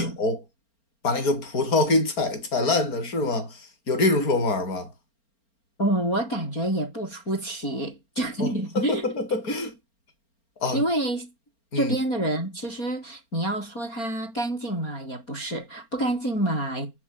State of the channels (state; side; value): late; right; 4.4 ms